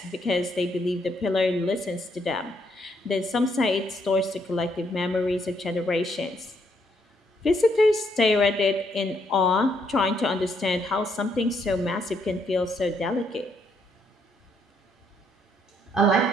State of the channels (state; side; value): normal; both; correlation 0.73